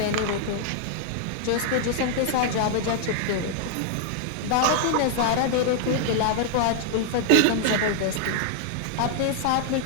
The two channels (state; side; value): different; both; correlation 0.00